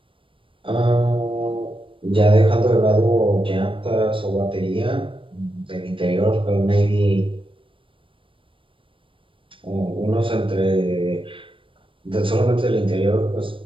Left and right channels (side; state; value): left; late; 0.25 ms